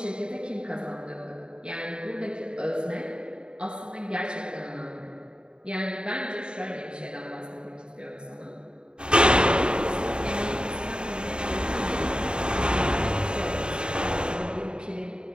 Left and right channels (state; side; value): late; left; 0.050 ms